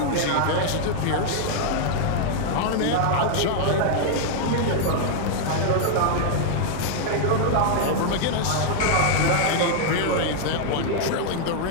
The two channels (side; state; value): both; different; correlation 0.00